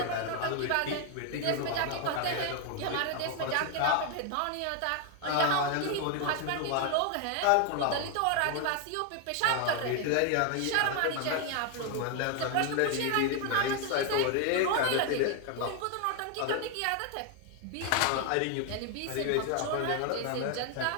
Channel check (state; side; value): different; both; correlation 0.01